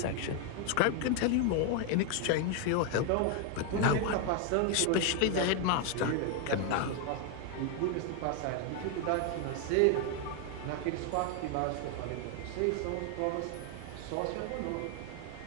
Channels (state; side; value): different; both; correlation 0.01